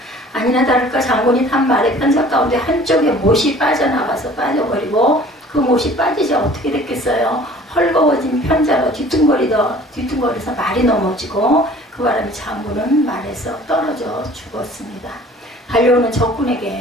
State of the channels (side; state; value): both; normal; correlation 0.49